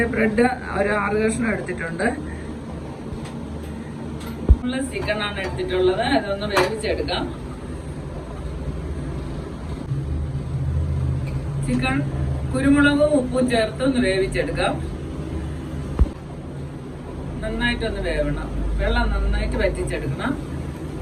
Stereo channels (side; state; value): both; identical; correlation 1.00